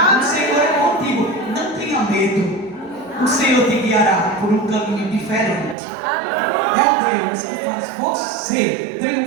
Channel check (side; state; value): left; drops out; at 5.8 s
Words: O Senhor é contigo. Não tenha medo. O Senhor te guiará por um caminho diferente. É o Deus que faz você